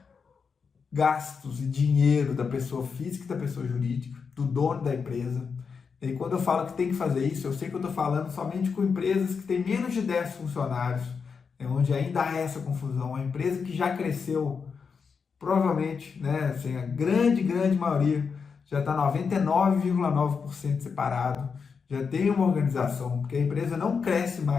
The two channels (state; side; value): quieter; right; 5.7 dB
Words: gastos e dinheiro da pessoa física e da pessoa jurídica, do dono da empresa. E quando eu falo que tem que fazer isso, eu sei que eu estou falando somente com empresas que têm menos de 10 funcionários, onde ainda há essa confusão. A empresa que já cresceu, provavelmente, né, assim, a grande maioria, já está 99,9% separado, já tem uma organização, porque a empresa não cresce